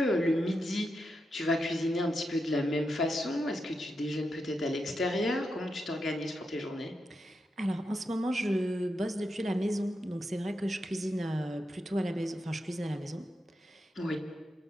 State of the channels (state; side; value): normal; both; correlation 0.86